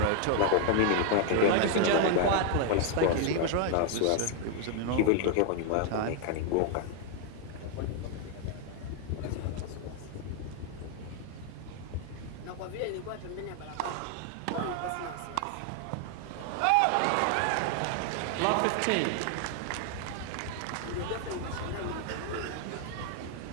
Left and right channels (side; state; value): both; different; correlation 0.00